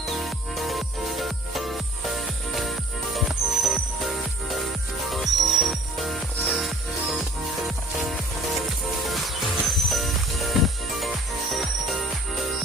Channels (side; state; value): both; normal; correlation 0.49